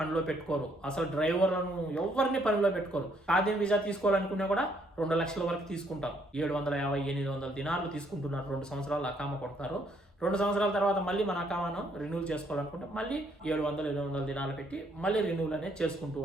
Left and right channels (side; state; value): both; normal; correlation 0.69